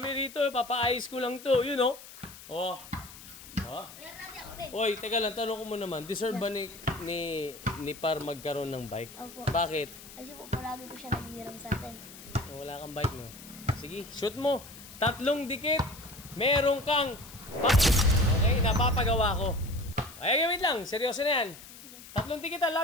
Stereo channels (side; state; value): left; noise; hiss, 17 dB below the sound